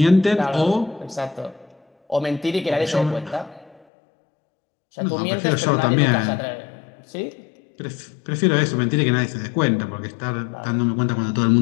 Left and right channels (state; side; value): drops out; right; at 3.8 s